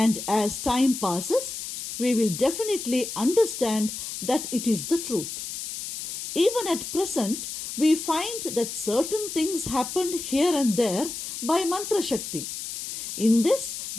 as time passes, we will definitely understand that it is the truth. Even at present, we find that certain things happened here and there by mantra shakti. In this,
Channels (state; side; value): noise; left; hiss, 7 dB below the sound